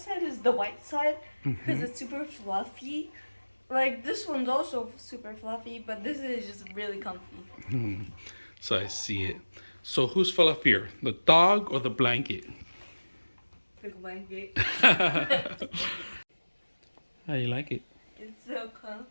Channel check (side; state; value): both; inverted; correlation -1.00